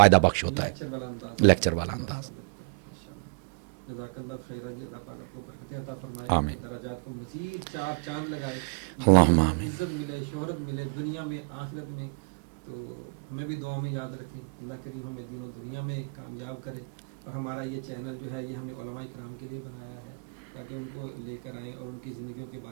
بخش ہوتا ہے، لیکچر والا انداز، لیکچر والا مؤثر لگتا ہے۔ ماشاءاللہ، جزاک اللہ خیرہ جی، اللہ پاک آپ کو برکتیں عطا فرمائے، آپ کے درجات کو مزید چار چاند لگائے، بلند ہوں، عزت ملے، شہرت ملے دنیا میں آخرت میں۔ تو ہمیں بھی دعاؤں میں یاد رکھیں، اللہ کریم ہمیں دین و دنیا میں کامیاب کرے۔ اور ہمارا یہ چینل جو ہے یہ ہم نے علماء کرام کے لیے بنایا ہے تاکہ ان کو لے کر آئیں اور ان کی زندگیوں کے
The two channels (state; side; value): quieter; left; 38.8 dB